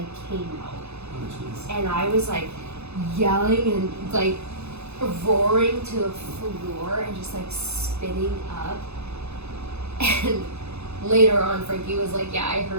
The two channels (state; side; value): late; left; 0.80 ms